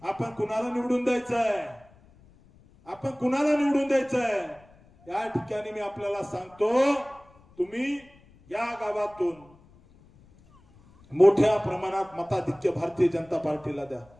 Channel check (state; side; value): noise; left; rumble, 27 dB below the sound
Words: आपण कुणाला निवडून द्यायचंय, आपण कुणाला निवडून द्यायचंय. या ठिकाणी मी आपल्याला सांगतो, तुम्ही या गावातून मोठ्या प्रमाणात मताधिक्य भारतीय जनता पार्टीला द्या,